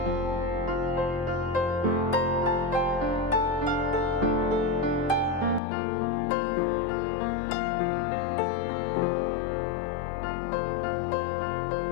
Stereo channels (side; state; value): right; drops out; at 5.6 s